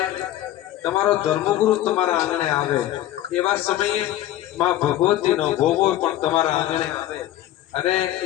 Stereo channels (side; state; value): right; quieter; 13.6 dB